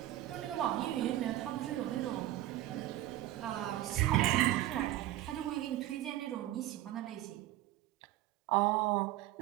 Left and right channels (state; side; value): quieter; left; 14.6 dB